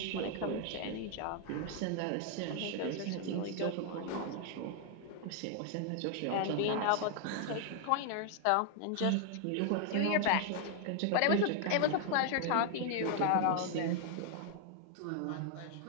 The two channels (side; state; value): both; different; correlation 0.00